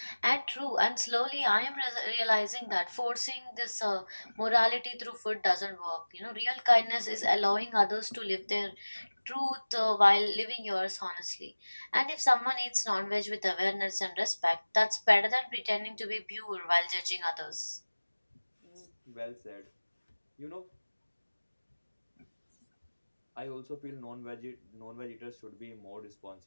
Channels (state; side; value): inverted; both; correlation -1.00